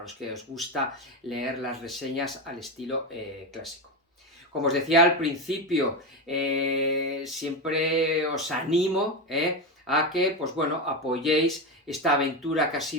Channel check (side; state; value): both; normal; correlation 0.15